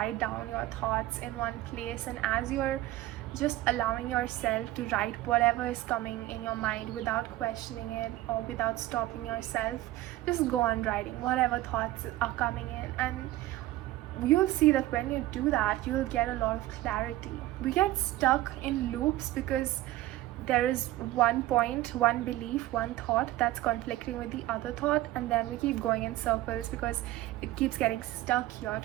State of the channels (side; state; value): left; quieter; 16.2 dB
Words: down your thoughts in one place, and as you're just allowing yourself to write whatever is coming in your mind without questioning it or without stopping yourself, just go on writing whatever thoughts are coming in, and you'll see that when you do that, you'll get a lot of clarity. We get stuck in loops because there is one point, one belief, one thought that's conflicting with the other thought, and then we keep going in circles because it keeps getting stuck here.